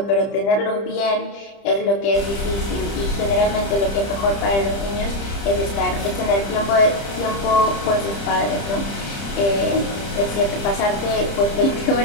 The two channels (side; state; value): right; late; 30 ms